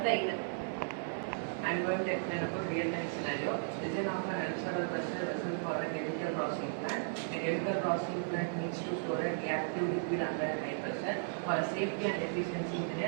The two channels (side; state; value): left; silent; digital silence